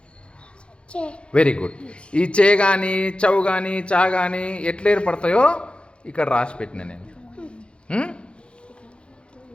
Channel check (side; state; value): right; late; 0.057 ms